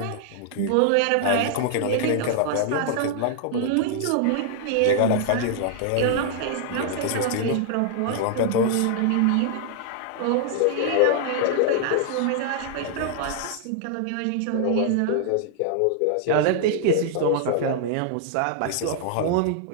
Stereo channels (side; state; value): both; different; correlation -0.01